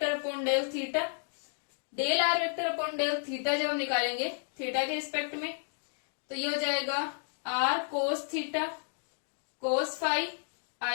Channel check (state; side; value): silent; right; digital silence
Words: upon del theta. Del are vector upon del theta जब हम निकालेंगे थीटा के रिस्पेक्ट में, तो ये हो जाएगा are cos theta cos phi